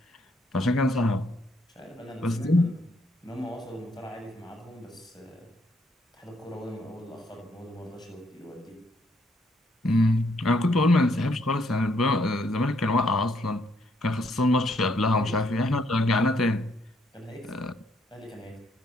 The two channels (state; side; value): normal; both; correlation 0.71